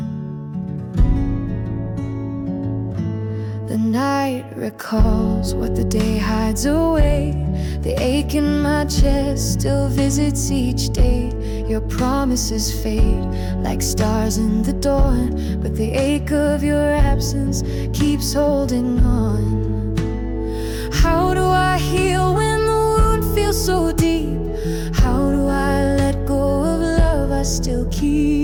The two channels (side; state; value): both; identical; correlation 1.00